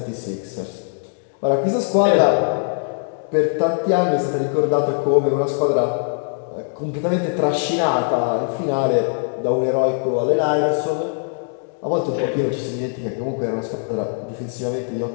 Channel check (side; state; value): right; silent; digital silence